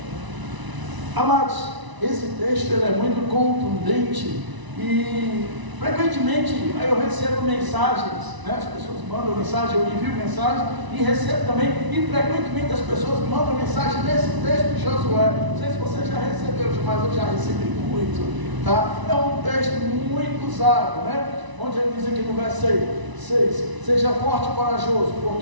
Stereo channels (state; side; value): late; left; 1.0 ms